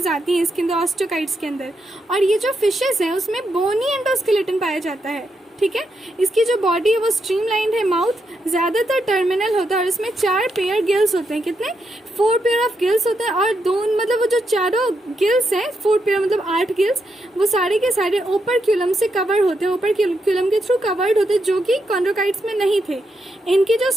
आती हैं इसके अंदर, ऑस्टियोकाइट्स के अंदर। और ये जो फिशेज हैं उसमें बोनी एंडोस्केलेटन पाया जाता है। ठीक है, इसकी जो बॉडी है वो स्ट्रीमलाइंड है, माउथ ज्यादातर टर्मिनल होता है, और इसमें 4 पेयर गिल्स होते हैं। कितने? 4 पेयर ऑफ गिल्स होते हैं, और 2 मतलब वो जो चारों गिल्स हैं, 4 पेयर मतलब 8 गिल्स, वो सारे के सारे ओपर्क्यूलम से कवर होते हैं, ओपर्क्यूलम के थ्रू कवर्ड होते हैं, जो कि कॉन्ड्रोकाइट्स में नहीं थे। इनकी जो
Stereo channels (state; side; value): normal; both; correlation 0.82